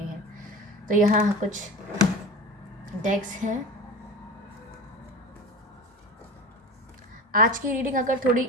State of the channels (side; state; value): both; normal; correlation 0.31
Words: तो यहाँ कुछ डेक्स हैं। आज की रीडिंग अगर थोड़ी